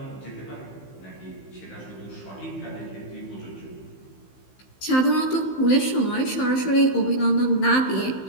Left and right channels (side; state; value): right; late; 15 ms